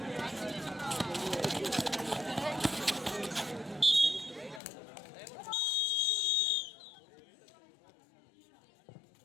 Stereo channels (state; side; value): drops out; right; at 4.6 s